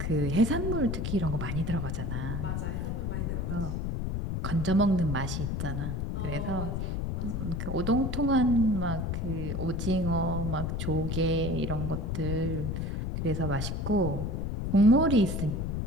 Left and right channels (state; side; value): noise; left; rumble, 1 dB below the sound